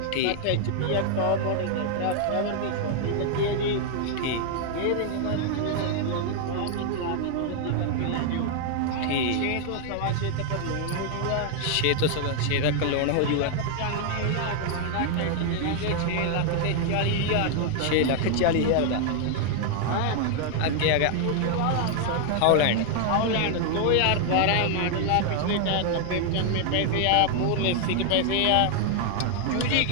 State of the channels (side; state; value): both; different; correlation 0.00